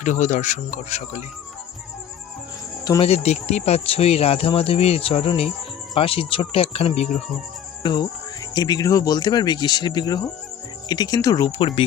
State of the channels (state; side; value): quieter; right; 9.4 dB